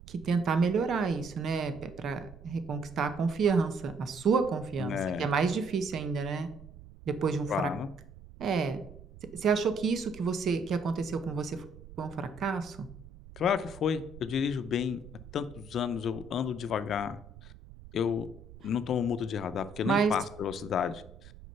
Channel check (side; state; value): right; noise; rumble, 18 dB below the sound